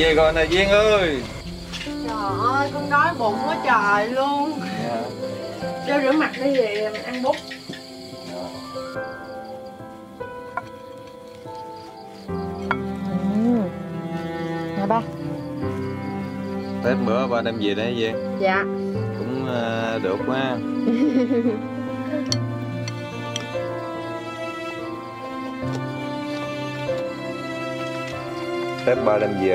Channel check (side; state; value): both; identical; correlation 1.00